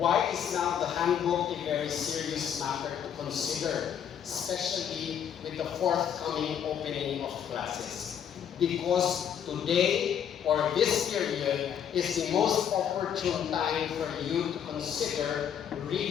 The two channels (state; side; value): quieter; right; 8.7 dB